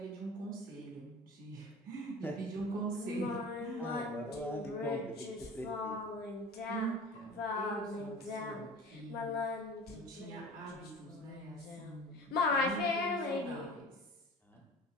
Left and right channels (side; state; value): both; normal; correlation 0.40